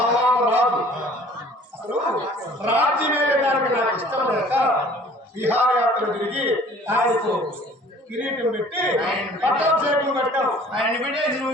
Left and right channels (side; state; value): both; normal; correlation 0.51